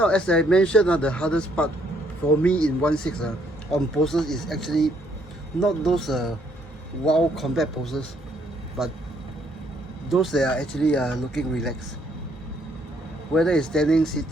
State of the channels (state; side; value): normal; both; correlation 0.69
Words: as I mentioned, the hardest part for me in 1/6 on poses is actually not those wild combat poses, but those that are actually looking relaxed. Whether it's standing,